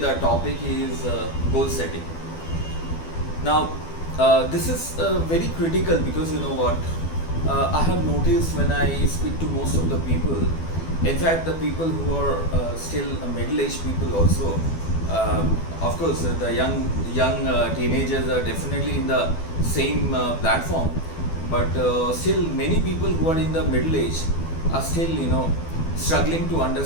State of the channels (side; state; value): right; late; 12 ms